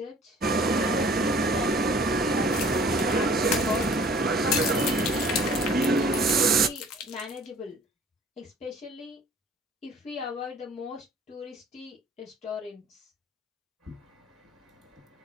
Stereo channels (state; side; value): normal; both; correlation 0.51